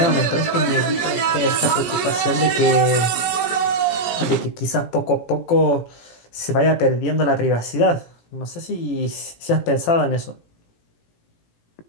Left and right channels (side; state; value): right; late; 17 ms